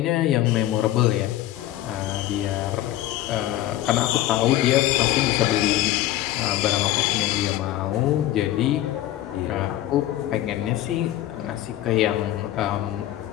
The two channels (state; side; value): quieter; right; 13.9 dB